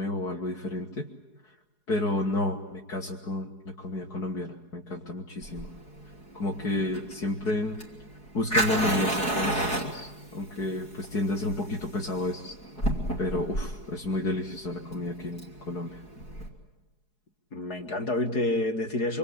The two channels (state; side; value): late; right; 4.7 ms